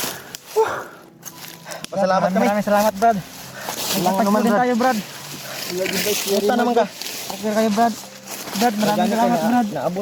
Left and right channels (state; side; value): identical; both; correlation 1.00